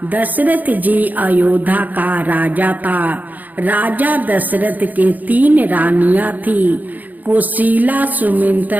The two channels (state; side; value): late; left; 0.082 ms